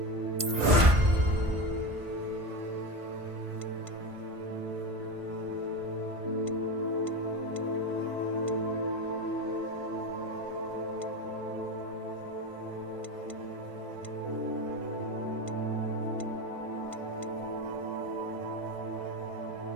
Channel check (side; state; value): left; late; 1.5 ms